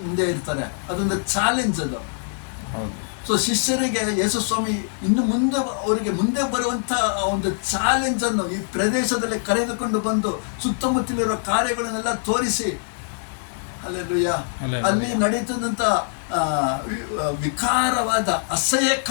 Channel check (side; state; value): right; silent; digital silence